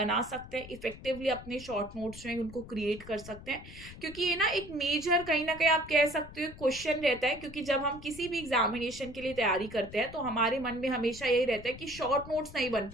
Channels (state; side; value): noise; left; rumble, 15 dB below the sound